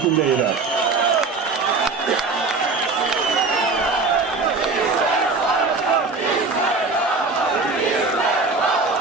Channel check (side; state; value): left; quieter; 4.0 dB